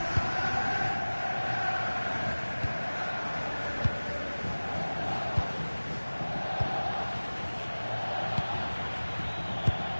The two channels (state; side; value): inverted; both; correlation -1.00